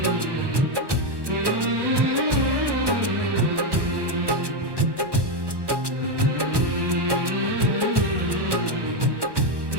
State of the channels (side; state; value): left; late; 1.1 ms